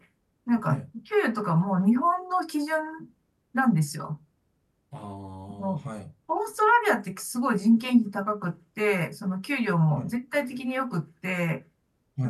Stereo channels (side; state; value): both; identical; correlation 1.00